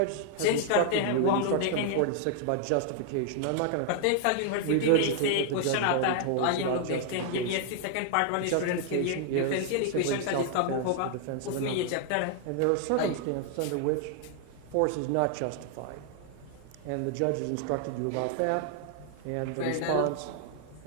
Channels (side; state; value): both; different; correlation 0.00